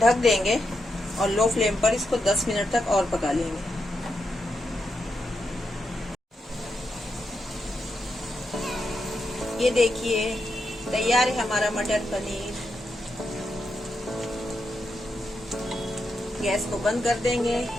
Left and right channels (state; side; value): normal; both; correlation 0.85